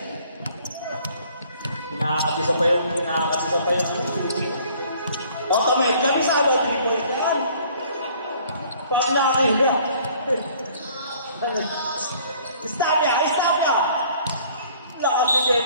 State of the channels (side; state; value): both; inverted; correlation -0.56